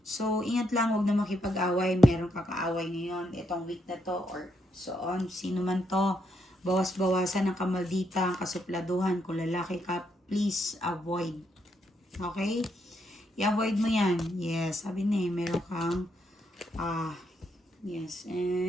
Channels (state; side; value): normal; both; correlation 0.78